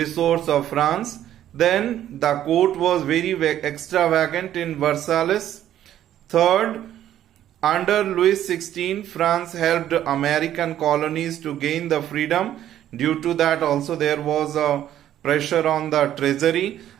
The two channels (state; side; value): quieter; left; 11.7 dB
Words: of France. Then the court was very extravagant in Versailles. Third, under Louis XVI, France helped American colonies to gain the freedom. Due to that also there was a pressure on the treasury.